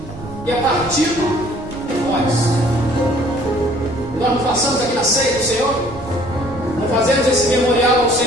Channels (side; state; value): right; noise; rumble, 14 dB below the sound